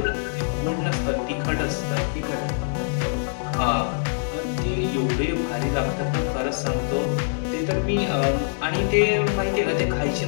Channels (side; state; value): right; silent; digital silence